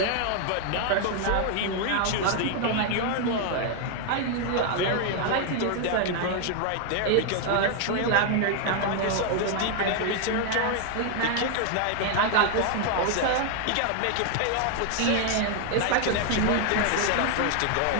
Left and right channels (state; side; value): different; both; correlation 0.00